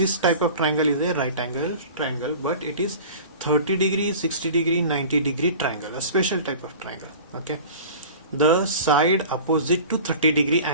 type of triangle is a right angle triangle, but it is 30 degree, 60 degree, 90 degree triangle, a special type of triangle. Okay, the side opposite to 30 degree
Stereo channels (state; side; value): inverted; both; correlation -0.39